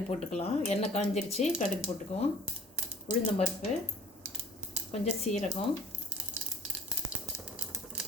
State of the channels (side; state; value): both; normal; correlation 0.52